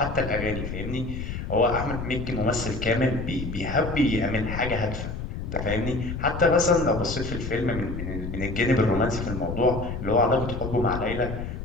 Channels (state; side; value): noise; left; rumble, 6 dB below the sound